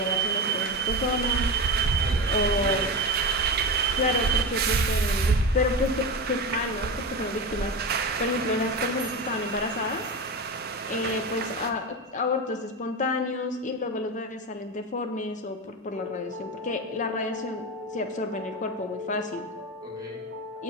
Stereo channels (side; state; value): both; normal; correlation 0.22